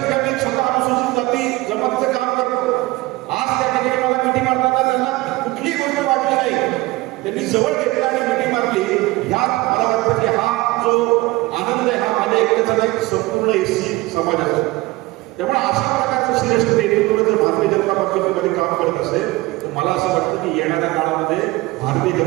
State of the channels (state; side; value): quieter; left; 20.8 dB